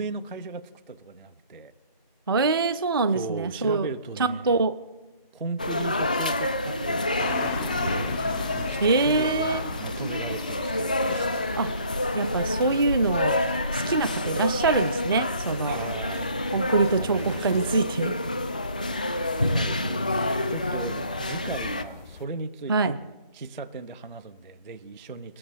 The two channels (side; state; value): both; inverted; correlation -0.57